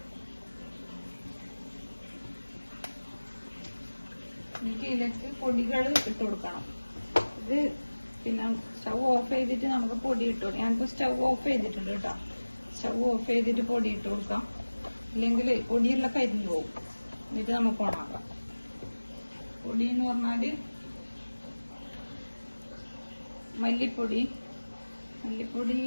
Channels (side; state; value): both; inverted; correlation -1.00